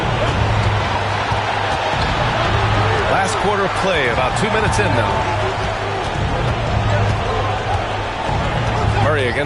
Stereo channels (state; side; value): identical; both; correlation 1.00